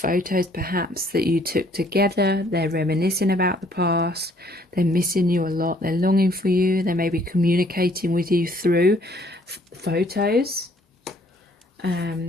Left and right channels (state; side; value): normal; both; correlation 0.62